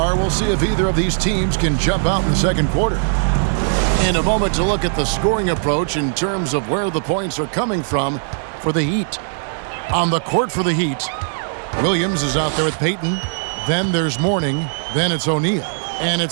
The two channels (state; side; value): silent; left; digital silence